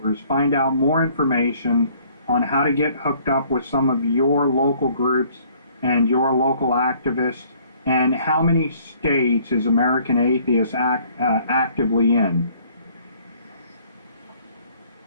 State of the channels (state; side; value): inverted; both; correlation -0.59